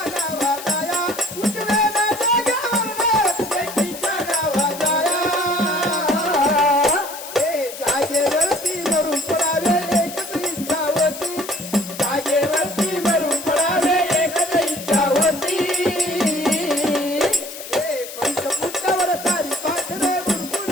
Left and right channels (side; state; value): left; noise; hiss, 11 dB below the sound